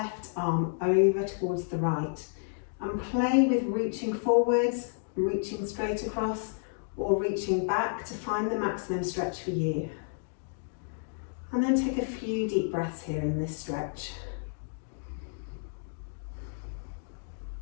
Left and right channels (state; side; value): silent; right; digital silence